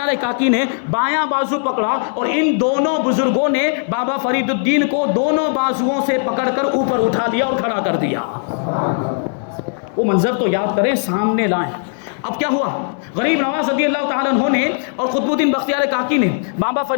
کاکی نے بایاں بازو پکڑا، اور ان دونوں بزرگوں نے بابا فرید الدین کو دونوں بازوؤں سے پکڑ کر اوپر اٹھا لیا اور کھڑا کر دیا۔ وہ منظر تو یاد کریں، سامنے لائیں۔ اب کیا ہوا؟ غریب نواز رضی اللہ تعالیٰ عنہ نے اور قطب الدین بختیار کاکی نے بابا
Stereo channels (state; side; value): silent; right; digital silence